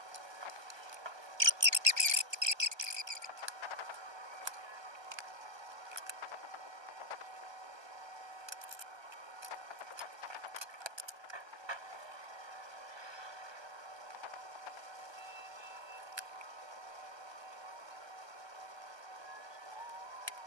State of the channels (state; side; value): late; left; 1.2 ms